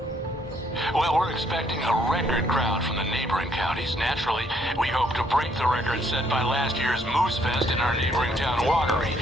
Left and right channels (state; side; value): normal; both; correlation 0.68